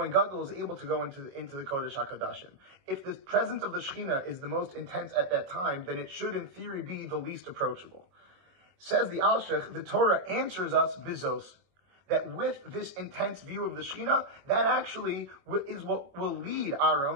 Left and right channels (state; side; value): late; left; 22 ms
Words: Gadol is able to go into the Kodesh HaKadoshim? If the presence of the Shechina is the most intense at that time, then it should in theory be the least approachable. Says the Alshich, the Torah answers us Bizos, that with this intense view of the Shechina, that actually is what will lead